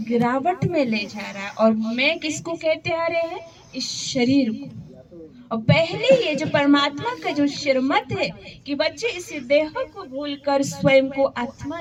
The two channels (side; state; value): both; identical; correlation 1.00